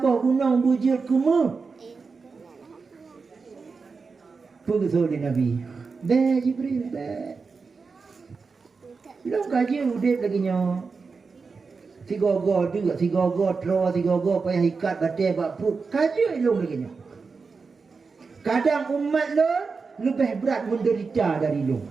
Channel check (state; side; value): quieter; left; 4.7 dB